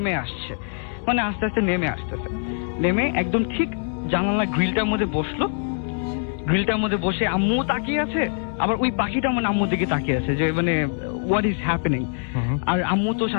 আসছে, মানে আস্তে আস্তে নেমে একদম ঠিক জানালার গ্রিলটার মধ্যে বসলো। গ্রিলটার মধ্যে বসে আম্মু তাকিয়ে আছে, আবার ওই পাখিটা মানে আম্মুর দিকে তাকিয়ে আছে যে মানে হোয়াট ইজ হ্যাপেনিং। আর আম্মু তো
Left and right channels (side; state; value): right; silent; 57 dB below the other